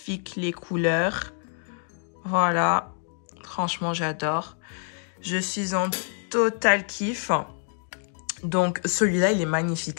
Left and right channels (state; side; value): silent; right; 56 dB below the other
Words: les couleurs. Voilà, franchement, j'adore. Je suis en total kiff. Donc, celui-là, il est